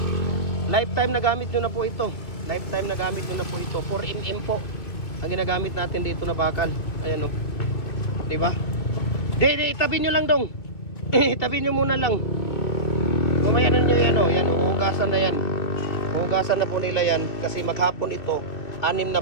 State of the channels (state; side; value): late; right; 2.7 ms